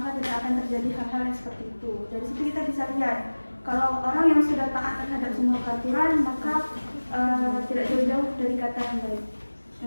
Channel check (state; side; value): inverted; both; correlation -1.00